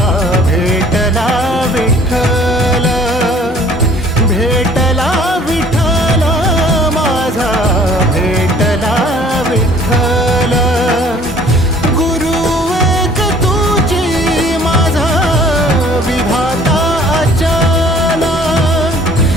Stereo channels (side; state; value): both; normal; correlation 0.54